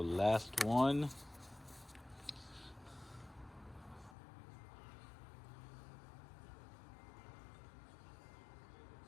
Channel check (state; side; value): drops out; right; at 4.2 s